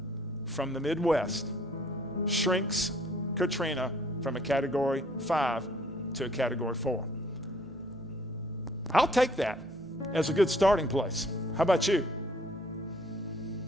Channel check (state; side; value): noise; left; hum, 25 dB below the sound